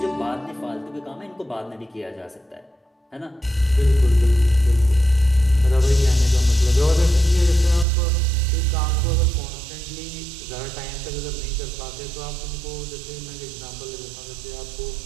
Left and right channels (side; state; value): left; drops out; at 7.9 s